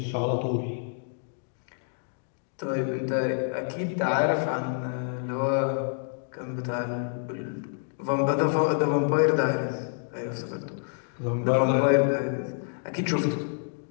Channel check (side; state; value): right; silent; digital silence